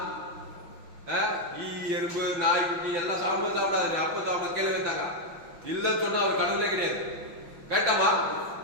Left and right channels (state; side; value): late; left; 6.0 ms